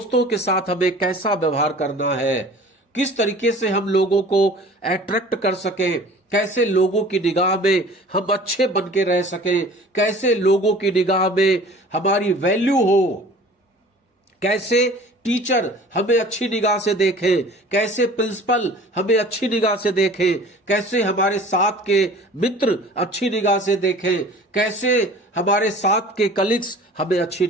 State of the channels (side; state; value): both; normal; correlation 0.45